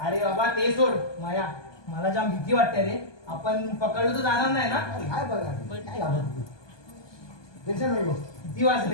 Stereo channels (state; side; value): late; right; 1.2 ms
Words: बाबा ते सोड माया मला जाम भीती वाटते रे आपण पकडलो तर जाणार नाही ना काय बघा काय टेन्शन नको किती